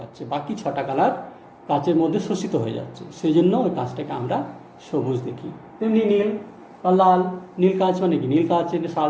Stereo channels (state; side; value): identical; both; correlation 1.00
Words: বাকি 6টা কালার কাচের মধ্যে শোষিত হয়ে যাচ্ছে, সেই জন্য ওই কাঁচটাকে আমরা সবুজ দেখি। তেমনি নীল বা লাল, নীল কাঁচ মানে কি, নীল কাঁচের